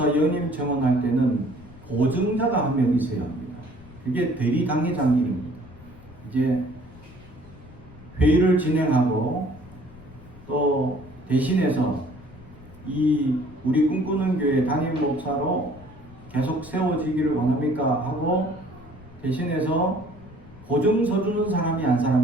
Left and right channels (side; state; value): left; noise; rumble, 20 dB below the sound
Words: 연임 청원할 때는 보증자가 한 명 있어야 합니다. 그게 대리 당회장 일입니다. 이제 회의를 진행하고 또 대신해서 이 우리 꿈꾸는 교회 담임 목사로 계속 세워지기를 원합니까? 하고 대신해서 보증서 주는 사람이 한